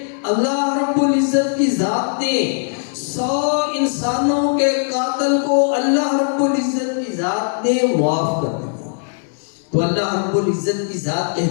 اللہ رب العزت کی ذات نے 100 انسانوں کے قاتل کو اللہ رب العزت کی ذات نے معاف کر دیا۔ تو اللہ رب العزت کی ذات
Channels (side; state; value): right; silent; 66 dB below the other